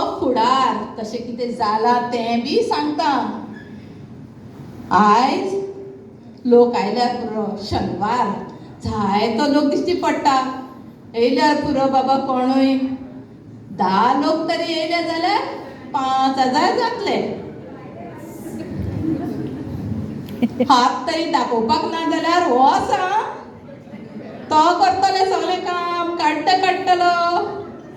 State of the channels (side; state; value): both; identical; correlation 1.00